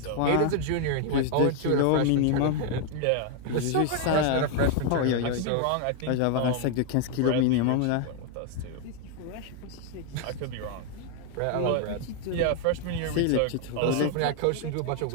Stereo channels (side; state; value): both; different; correlation 0.00